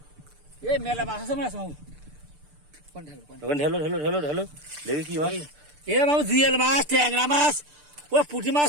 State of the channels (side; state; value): left; late; 6.8 ms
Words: এই মেলা মাছ আছে। মাছ ওখানে ঢেলো ঢেলো ঢেলো ঢেলো দেখি কি মাছ। এ বাবু জিয়েল মাছ, ট্যাংরা মাছ, ওই পুঁটি